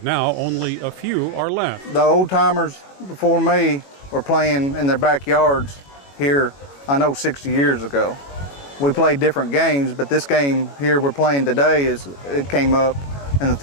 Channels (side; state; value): right; late; 21 ms